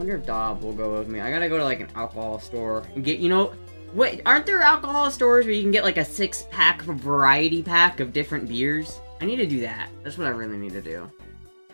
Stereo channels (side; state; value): both; inverted; correlation -1.00